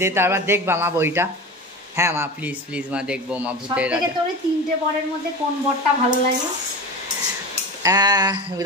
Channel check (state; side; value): normal; both; correlation 0.29